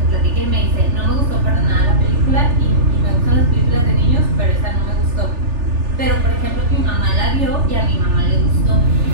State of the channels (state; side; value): late; left; 3.4 ms